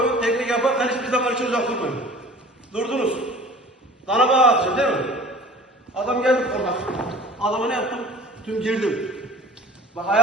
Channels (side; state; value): both; normal; correlation 0.45